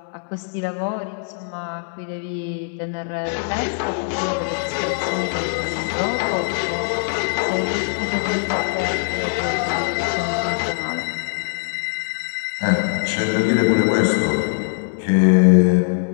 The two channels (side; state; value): right; silent; 65 dB below the other